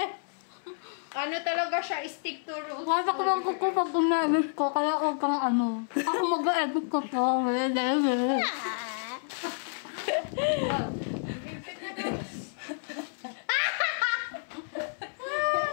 Ano talaga siya, stick to roots. Wasak lang ko pag gumamit ko, kaya huwag kang ano. Ako mag-edit ko to.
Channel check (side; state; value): right; silent; 58 dB below the other